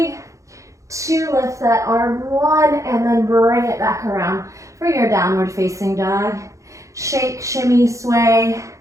2, lift that arm. 1, and then bring it back around for your downward facing dog. Shake, shimmy, sway,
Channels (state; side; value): late; left; 0.15 ms